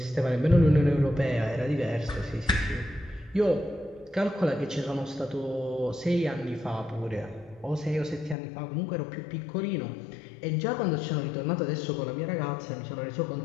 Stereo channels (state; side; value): drops out; right; at 8.3 s